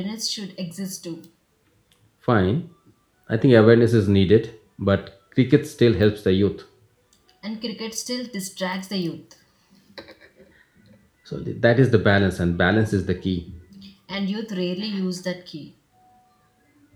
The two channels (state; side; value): identical; both; correlation 1.00